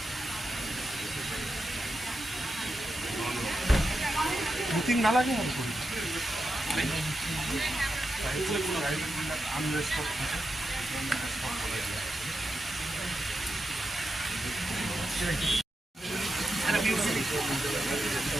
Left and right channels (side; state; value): both; normal; correlation 0.88